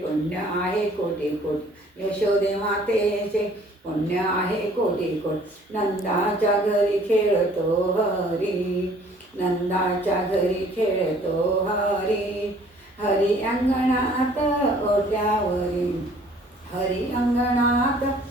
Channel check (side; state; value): both; normal; correlation 0.56